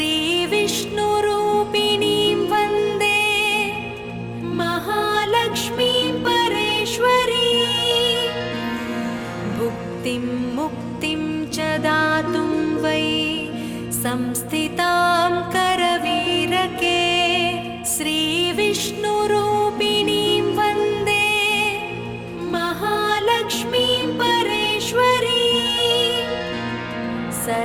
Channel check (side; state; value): both; identical; correlation 1.00